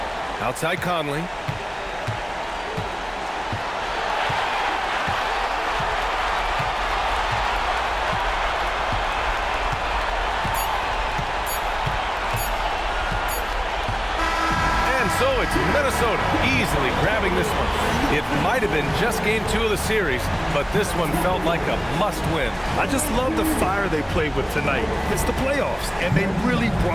Outside Conley. So it's Minnesota easily grabbing this one. It might have been just game 2 of the series, but this one felt like a must-win. I just love the fire they played with tonight. It's the playoffs, and they really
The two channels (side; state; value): both; identical; correlation 1.00